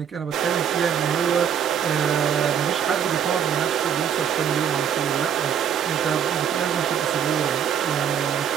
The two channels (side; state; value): left; quieter; 8.4 dB